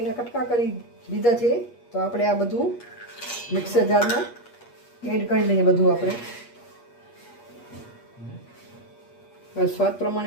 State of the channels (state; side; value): late; right; 8.4 ms